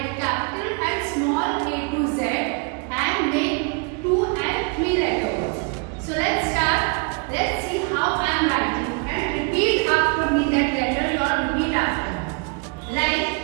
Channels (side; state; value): left; quieter; 33.9 dB